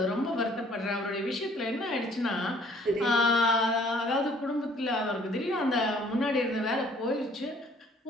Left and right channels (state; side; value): normal; both; correlation 0.58